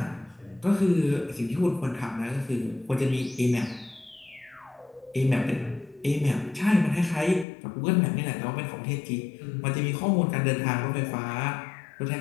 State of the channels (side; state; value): right; drops out; at 7.5 s